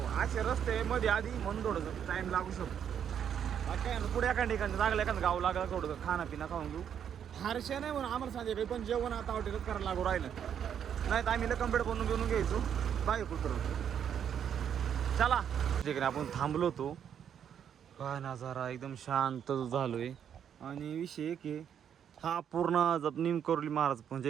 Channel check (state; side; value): quieter; left; 8.7 dB